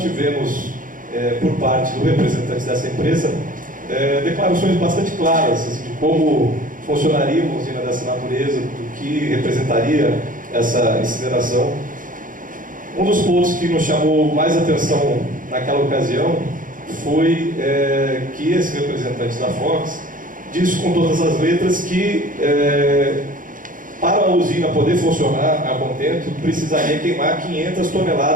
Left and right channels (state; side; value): late; left; 0.39 ms